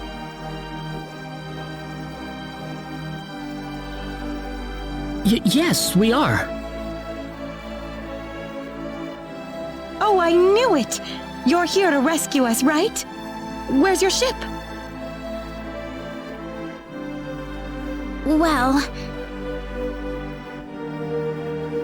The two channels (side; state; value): both; identical; correlation 1.00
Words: Yes, we are. Oh, I knew it! You're here to rescue us, right? Where's your ship? Well,